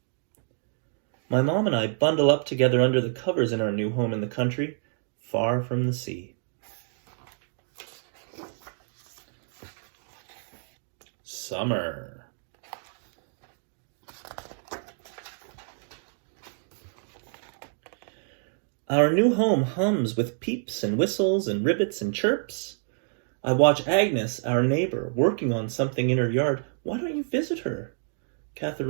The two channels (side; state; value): left; silent; digital silence